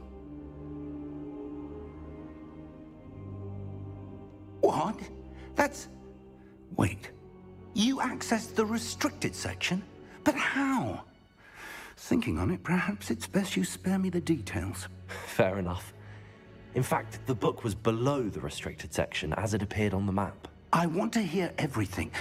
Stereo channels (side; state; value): both; identical; correlation 1.00